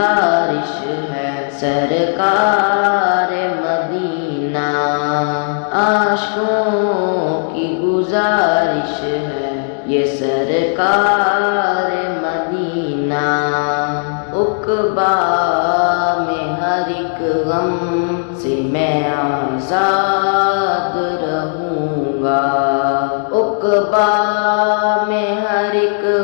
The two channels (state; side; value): silent; right; 65 dB below the other